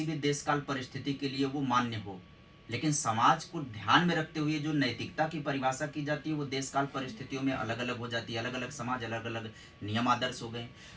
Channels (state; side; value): identical; both; correlation 1.00